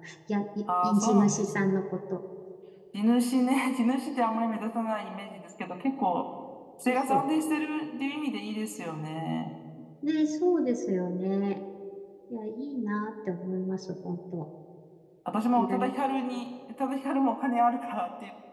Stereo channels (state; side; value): identical; both; correlation 1.00